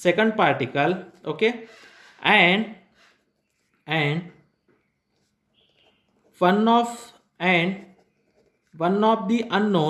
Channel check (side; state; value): both; identical; correlation 1.00